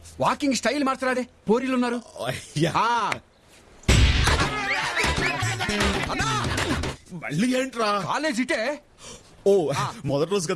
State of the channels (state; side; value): identical; both; correlation 1.00